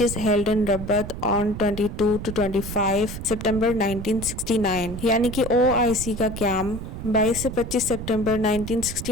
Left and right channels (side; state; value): right; noise; rumble, 8 dB below the sound